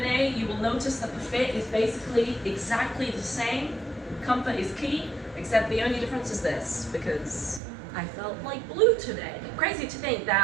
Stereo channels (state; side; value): drops out; left; at 7.6 s